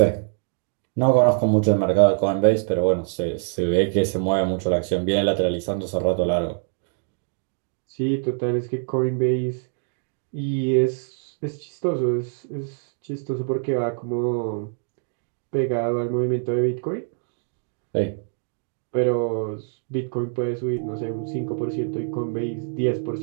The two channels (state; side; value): silent; left; 62 dB below the other